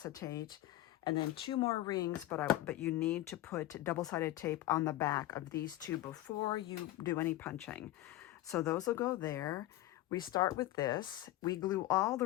and then 2 more rings, but you need to put double-sided tape on the back of these 2 before you do any punching. So those will go there. We start with this. We glue all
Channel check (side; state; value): right; quieter; 15.4 dB